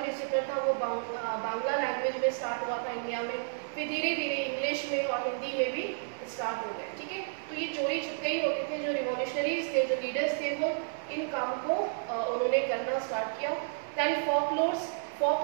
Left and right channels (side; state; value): left; silent; 57 dB below the other